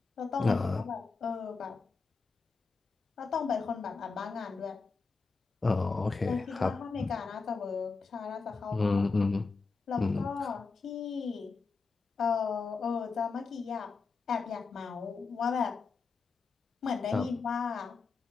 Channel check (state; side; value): quieter; right; 4.5 dB